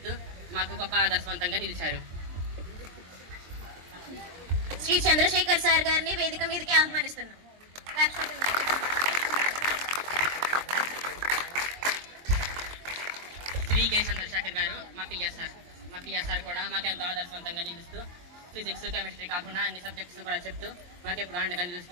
మాకు గొప్ప ఆదర్శవంతంగా నిలిచారు. శ్రీ చంద్రశేఖర్ సార్ గారిని వేదిక మీదకి ఆహ్వానిస్తున్నాం. శ్రీ కె చంద్రశేఖర్ గారు మా పిఎస్ఆర్ కూడా మాకు ఎంతో ఆదర్శవంతంగా నిలుస్తూ ఫిజిక్స్, కెమిస్ట్రీ కాకుండా అన్ని సబ్జెక్ట్స్ కూడా చెప్తూ మాకు ఎప్పుడు అండగా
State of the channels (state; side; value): late; left; 23 ms